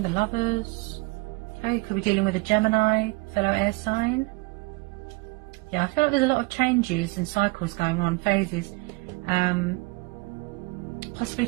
the Lovers. Okay, could be dealing with a Gemini, fellow air sign. Yeah, I feel like there's a lot of changes and cycles going on, phases. Possibly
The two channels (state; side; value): quieter; left; 25.6 dB